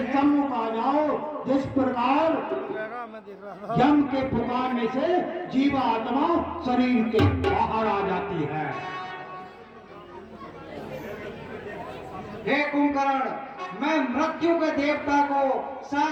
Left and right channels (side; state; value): both; identical; correlation 1.00